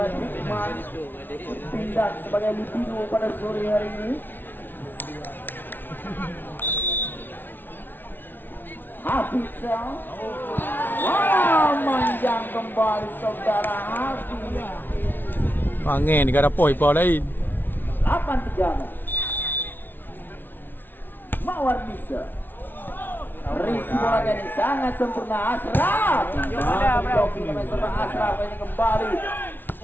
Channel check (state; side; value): late; right; 0.094 ms